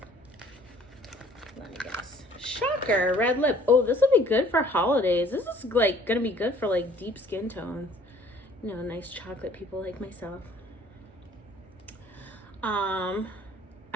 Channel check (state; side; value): normal; both; correlation 0.55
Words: Let me guess. Shocker, red lip. Oh, this will be good for holidays. This is like gonna be good for like deep skin tones. You know, nice chocolate people like myself.